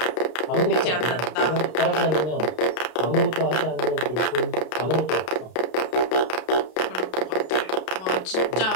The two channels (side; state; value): right; late; 32 ms